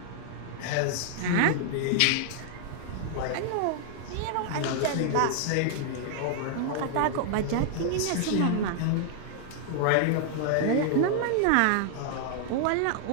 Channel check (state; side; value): different; both; correlation -0.01